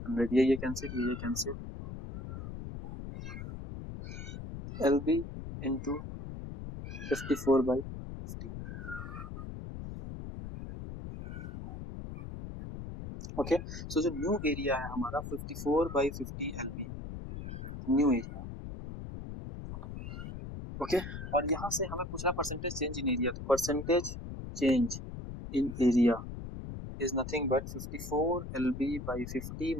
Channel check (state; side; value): noise; left; rumble, 8 dB below the sound